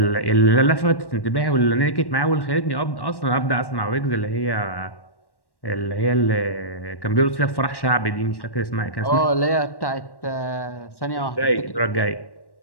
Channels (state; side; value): late; right; 1.1 ms